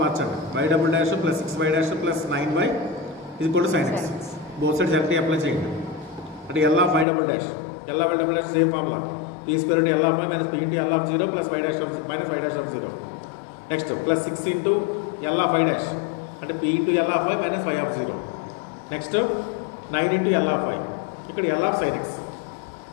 మార్చండి. y double dash plus 6y dash plus 9y is equal to sin x. Both sides directly apply చేయండి. అంటే L of y double dash same formula. p square into L of y minus p into L of 0 plus y dash of minus y dash of 0. Next plus 6 into L of y dash అంటే p into L of y minus y of 0. Next 9 into L of y ఇక్కడ L of sin x.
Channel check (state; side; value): drops out; right; at 7.1 s